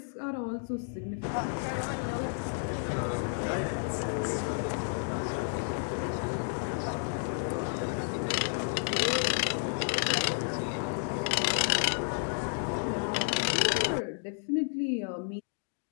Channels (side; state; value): right; silent; digital silence